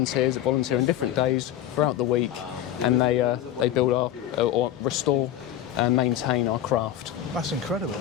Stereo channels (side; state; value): right; quieter; 11.6 dB